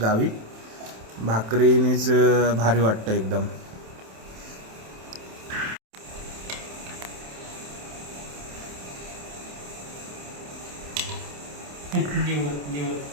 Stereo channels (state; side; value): late; left; 27 ms